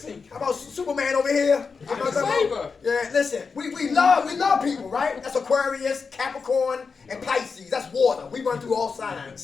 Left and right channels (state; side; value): quieter; right; 5.1 dB